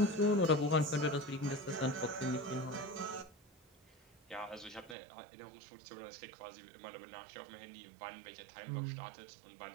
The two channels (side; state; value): left; drops out; at 5.0 s